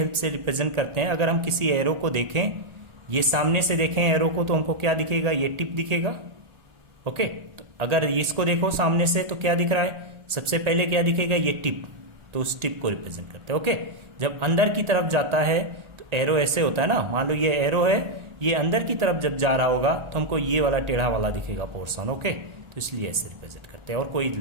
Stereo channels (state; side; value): late; left; 1.8 ms